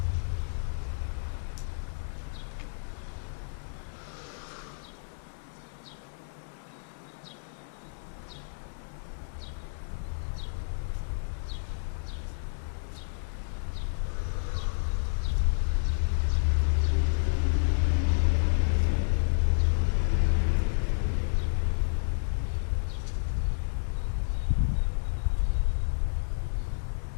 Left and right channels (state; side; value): silent; right; digital silence